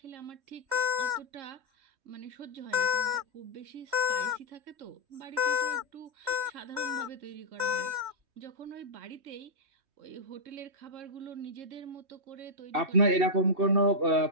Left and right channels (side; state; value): left; late; 3.1 ms